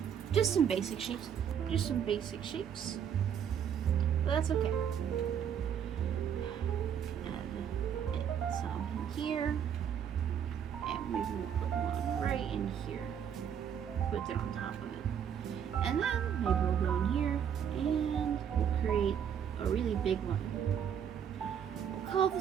Just some basic shapes. Just some basic shapes. But that's okay. Add some in here. And maybe we'll put one right in here. Put it on top of it. And then maybe we'll go in here and we'll create big one. We'll call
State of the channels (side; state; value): left; quieter; 8.4 dB